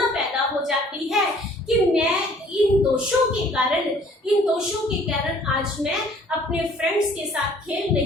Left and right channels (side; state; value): both; normal; correlation 0.56